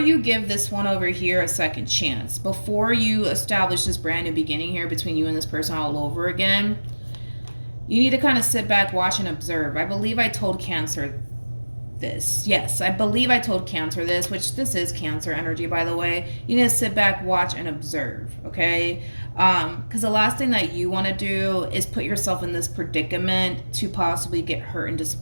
give this one over here a second chance, before you establish this brand new beginning here between you and this person all over again, you need to kind of sit back, watch, and observe. I believe I told Cancer this. Yes, I believe I told Cancer this, which this is Cancer energy, by the way. You need to sit back, watch, and observe, okay? Because the last thing that you want to do is put yourself in this predicament to possibly get hurt and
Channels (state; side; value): inverted; both; correlation -1.00